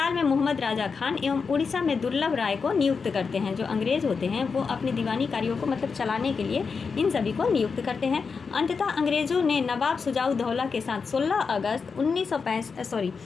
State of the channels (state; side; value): quieter; right; 5.2 dB